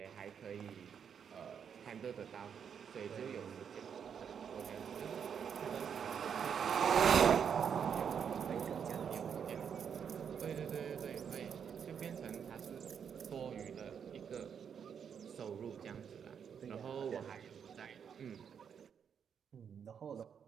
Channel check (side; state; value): left; quieter; 7.5 dB